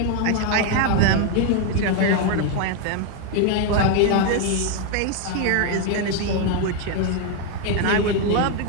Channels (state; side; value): different; both; correlation 0.01